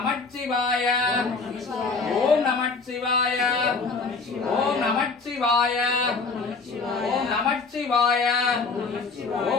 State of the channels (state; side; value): quieter; right; 4.3 dB